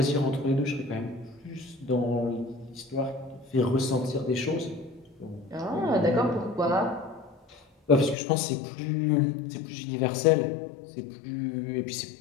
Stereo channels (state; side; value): drops out; right; at 8.2 s